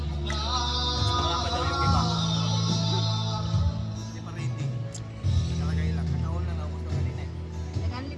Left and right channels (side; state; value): both; identical; correlation 1.00